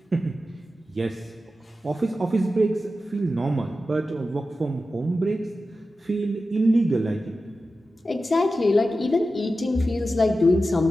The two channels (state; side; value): normal; both; correlation 0.93